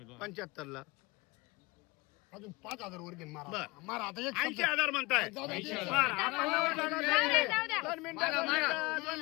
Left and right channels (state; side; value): quieter; right; 24.0 dB